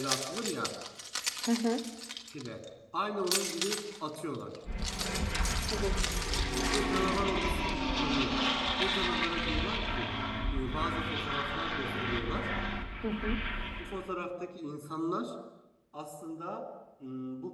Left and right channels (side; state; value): both; identical; correlation 1.00